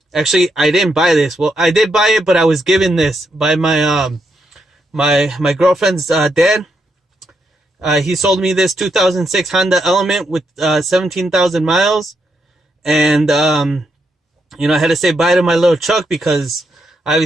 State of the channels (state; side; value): normal; both; correlation 0.80